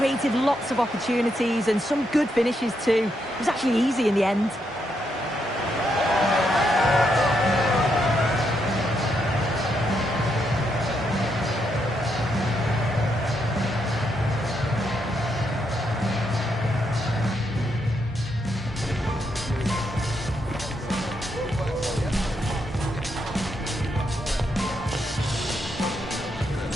lots of opportunities and some good finishes too. It was actually easy in the end.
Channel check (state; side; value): normal; both; correlation 0.79